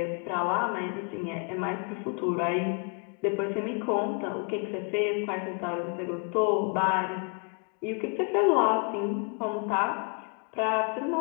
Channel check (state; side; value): quieter; right; 36.0 dB